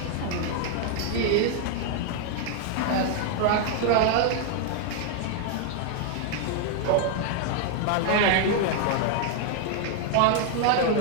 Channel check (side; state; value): both; different; correlation 0.00